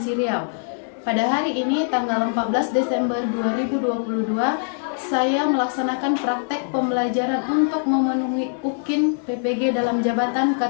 Riau. Pada hari ini, tanggal 14 Desember 2022, saya melaksanakan praktek pembelajaran untuk memenuhi UKIN PPG dalam jabatan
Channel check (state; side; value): silent; right; digital silence